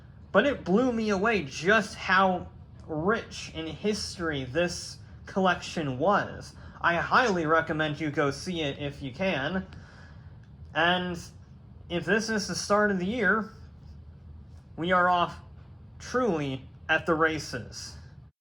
But it blew me away just how rich in history this collection was. I highly recommend you go see it if you can. And if this is the start of the year, we are off truly at the races.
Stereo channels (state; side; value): identical; both; correlation 1.00